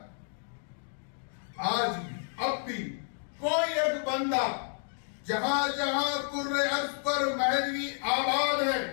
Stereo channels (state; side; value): silent; right; 57 dB below the other